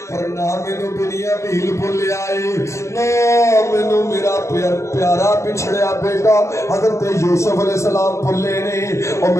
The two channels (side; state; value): right; late; 0.14 ms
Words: پر نہ مینوں بنیامین بھولیا ہے نہ مینوں میرا پیارا پچھڑیا بیٹا حضرت یوسف علیہ السلام بھولے نے او